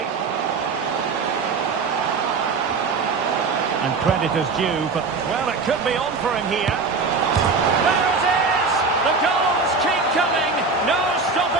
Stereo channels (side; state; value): left; quieter; 4.4 dB